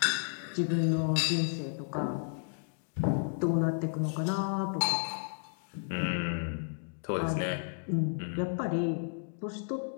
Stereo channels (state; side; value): silent; right; digital silence